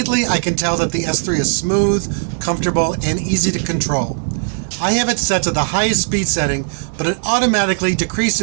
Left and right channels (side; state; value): left; silent; 57 dB below the other